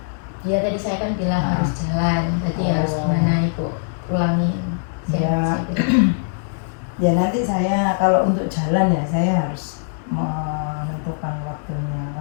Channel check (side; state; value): right; silent; 65 dB below the other